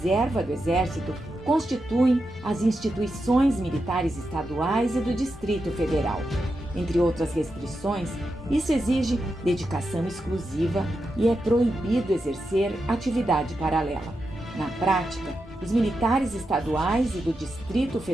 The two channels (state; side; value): normal; both; correlation 0.87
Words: do Exército constituem as instituições militares estaduais e do Distrito Federal. Entre outras restrições, isso exige dedicação exclusiva e é proibido exercer atividade paralela. Na prática, os militares estaduais e do Distrito